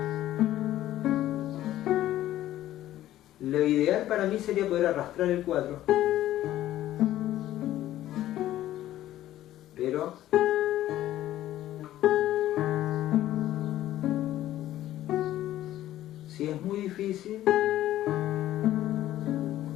Lo ideal para mí sería poder arrastrar el 4, pero si es muy difícil,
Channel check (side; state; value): right; quieter; 13.7 dB